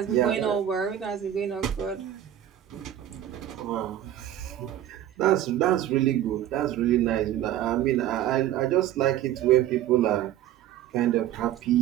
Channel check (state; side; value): quieter; left; 11.9 dB